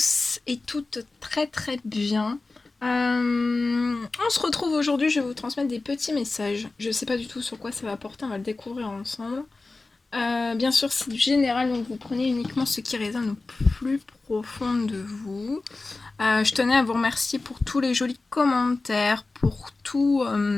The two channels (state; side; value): quieter; right; 3.5 dB